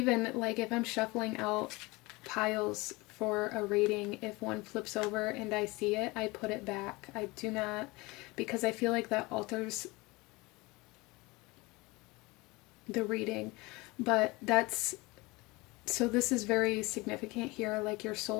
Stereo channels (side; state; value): right; quieter; 23.4 dB